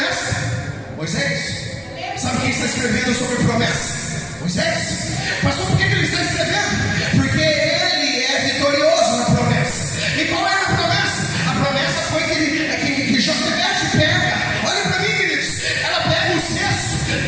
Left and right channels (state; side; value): identical; both; correlation 1.00